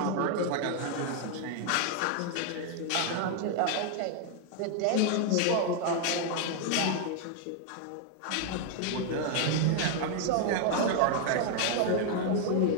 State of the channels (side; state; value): both; different; correlation 0.00